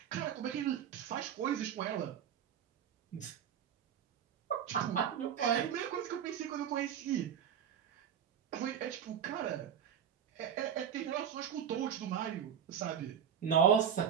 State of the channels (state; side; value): quieter; left; 8.6 dB